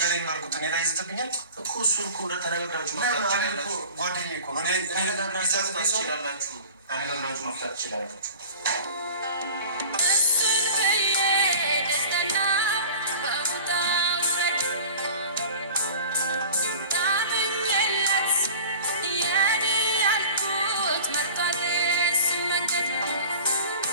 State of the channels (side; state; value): both; inverted; correlation -0.41